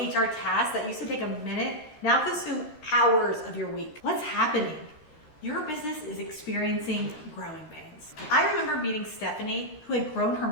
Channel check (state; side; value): late; right; 13 ms